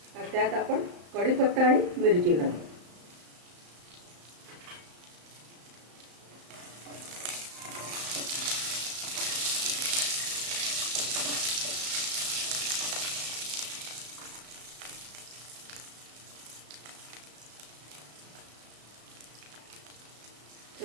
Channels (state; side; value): late; left; 35 ms